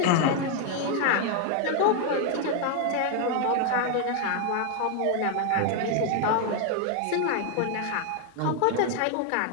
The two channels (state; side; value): different; both; correlation 0.00